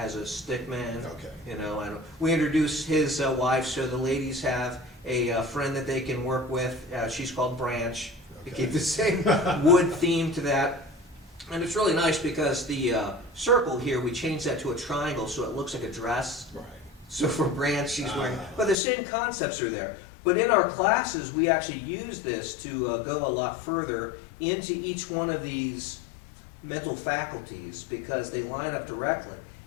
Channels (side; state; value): right; drops out; at 18.8 s